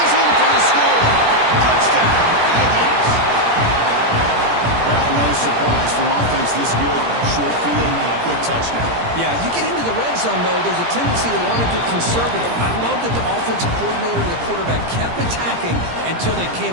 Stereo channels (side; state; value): left; late; 17 ms